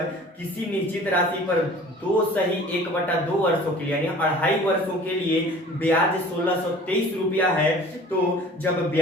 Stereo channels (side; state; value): both; normal; correlation 0.46